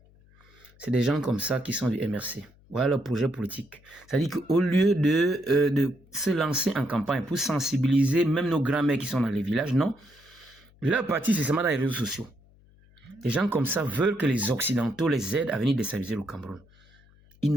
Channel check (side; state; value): left; noise; hum, 28 dB below the sound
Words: C'est des gens comme ça qui sont du MRC. Voilà le projet politique. C'est-à-dire qu'au lieu de se lancer en campagne pour sensibiliser même nos grands-mères qui sont dans les villages, non. Leur parti, c'est seulement dans les réseaux sociaux. Des gens comme ça veulent que les Occidentaux les aident à venir déstabiliser le Cameroun. Ils